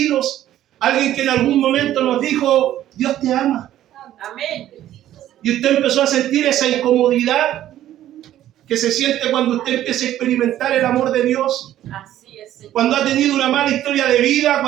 alguien que en algún momento nos dijo, Dios te ama. Amén. Y usted empezó a sentir esa incomodidad que se siente cuando usted empieza a experimentar el amor de Dios. Así es, Señor. Cuando ha tenido una mala historia de vida,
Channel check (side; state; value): left; quieter; 12.6 dB